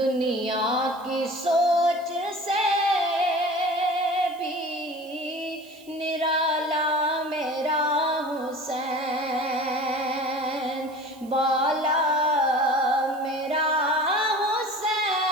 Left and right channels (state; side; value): noise; right; hiss, 25 dB below the sound